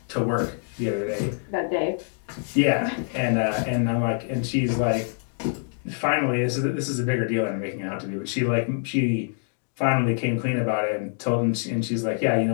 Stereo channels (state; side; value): silent; right; 62 dB below the other